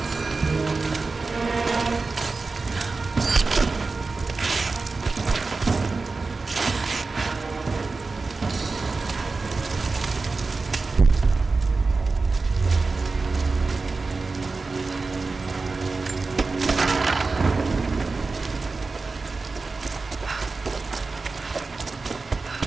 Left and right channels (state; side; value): quieter; left; 3.9 dB